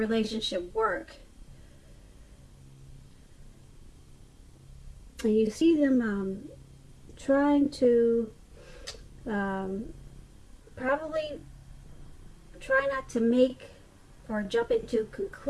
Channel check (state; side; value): identical; both; correlation 1.00